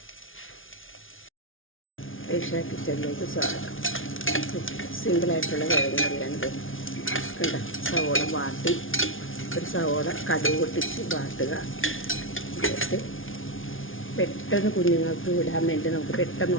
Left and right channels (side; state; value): right; late; 0.58 ms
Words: ഏഷ്യ കിച്ചണിലേക്ക് സ്വാഗതം. സിമ്പിളായിട്ടുള്ള കിഴങ്ങ് കറിയാണിത്. കണ്ട സവോള വാട്ടി, ഒരു സവോള കടുക് പൊട്ടിച്ച് വാട്ടുക. എന്നിട്ട് പെട്ടെന്ന് കുഞ്ഞുങ്ങൾക്ക് വിടാൻ വേണ്ടി നമുക്ക് പെട്ടെന്ന്